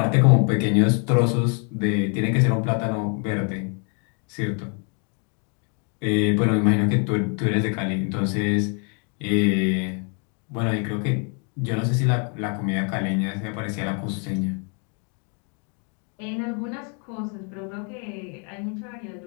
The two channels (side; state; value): right; quieter; 38.8 dB